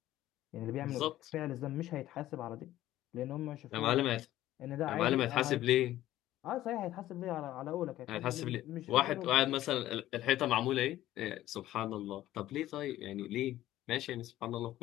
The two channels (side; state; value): right; quieter; 14.3 dB